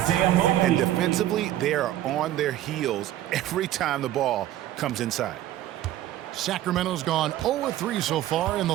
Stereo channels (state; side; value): quieter; left; 13.3 dB